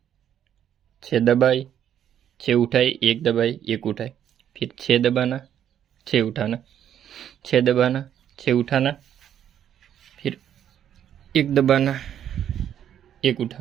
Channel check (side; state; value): left; quieter; 9.9 dB